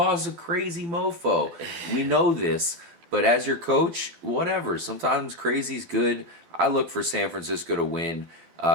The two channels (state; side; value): late; left; 12 ms